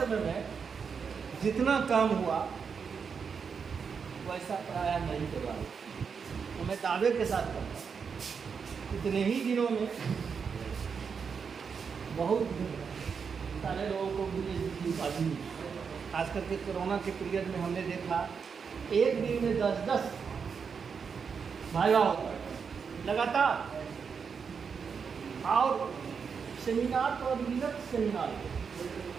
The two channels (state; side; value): quieter; left; 6.1 dB